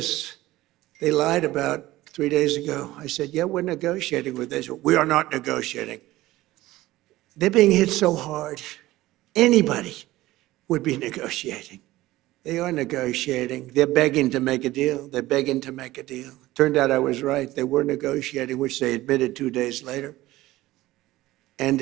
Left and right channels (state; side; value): quieter; left; 17.2 dB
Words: They lied about 3 days ago. I said, yeah, we're negotiating with Israel. We are not negotiating. They're being hit so hard. Anybody would be negotiating. They are negotiating. They're begging to make a deal. They're begging to make a deal. Turned out I was right. They were negotiating, which they admitted 2 days later. And